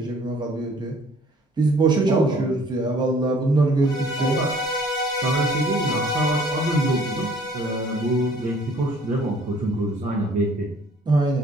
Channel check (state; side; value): normal; both; correlation 0.56